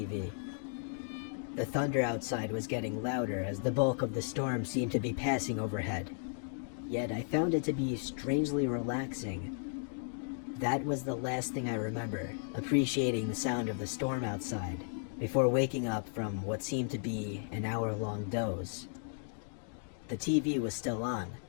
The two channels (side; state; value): right; silent; digital silence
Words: The thunder outside was getting louder as the bulk of the storm seemed to be passing overhead. Yet I found it to be strangely relaxing. That was the last thing I remember, appreciating the sound of the storm outside, before waking up from what seemed to be an hour-long doze. The TV was still on,